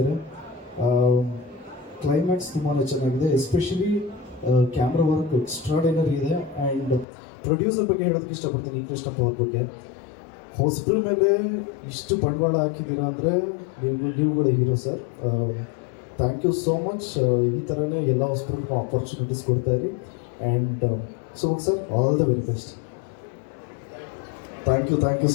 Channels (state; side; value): drops out; right; at 7.1 s